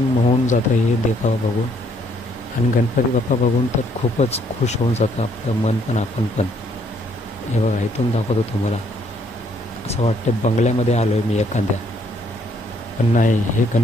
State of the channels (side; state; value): both; normal; correlation 0.67